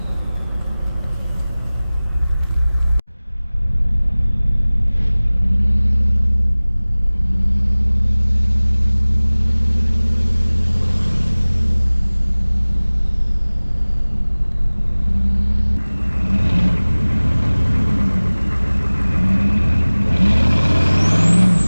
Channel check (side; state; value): both; inverted; correlation -0.99